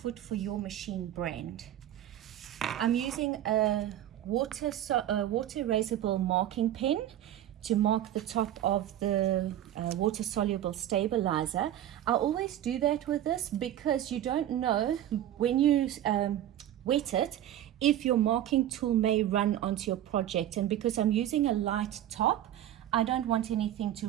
for your machine brand. I'm using a water erasable marking pen to mark the top of the water soluble stabilizer. I always do that with this because you don't know when you wet it if your marking tool may run onto your project, and because I'm using a light top, I don't want anything to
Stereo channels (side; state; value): left; quieter; 12.1 dB